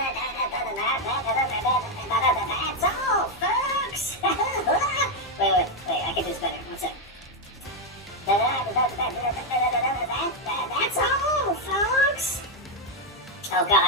That's all, folks. Wait. I can do this better. One sec. That's all, folks. Oh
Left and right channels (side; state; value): both; normal; correlation 0.03